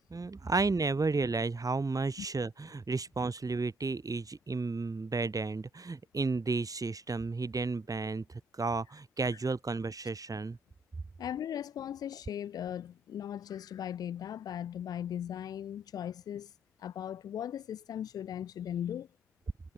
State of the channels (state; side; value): normal; both; correlation 0.67